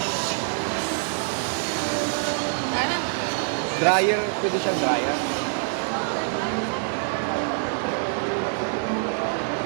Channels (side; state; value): left; silent; 62 dB below the other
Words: Dryer, pwede siyang dryer.